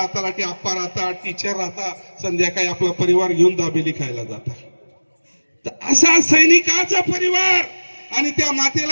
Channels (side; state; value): both; inverted; correlation -1.00